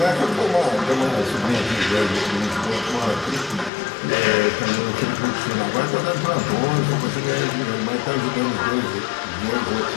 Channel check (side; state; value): right; drops out; at 3.7 s